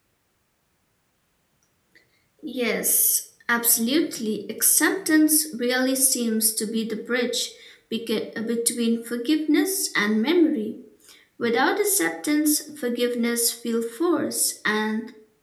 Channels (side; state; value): both; identical; correlation 1.00